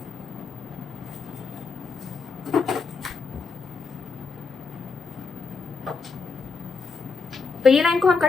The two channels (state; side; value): quieter; right; 4.7 dB